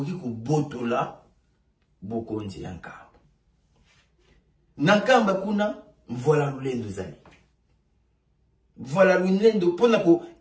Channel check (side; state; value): both; identical; correlation 1.00